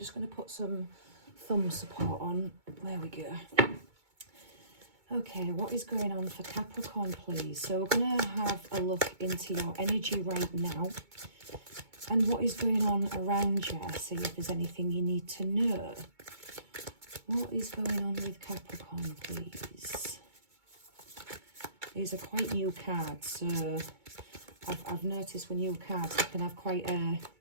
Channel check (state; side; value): late; left; 2.2 ms